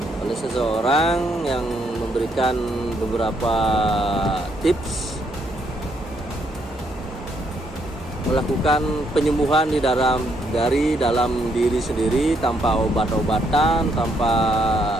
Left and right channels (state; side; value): normal; both; correlation 0.74